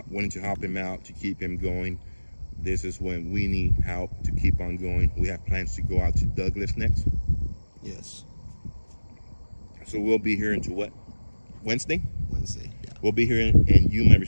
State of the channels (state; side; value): inverted; both; correlation -1.00